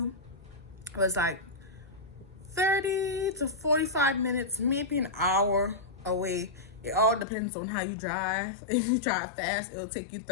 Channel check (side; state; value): right; drops out; at 7.2 s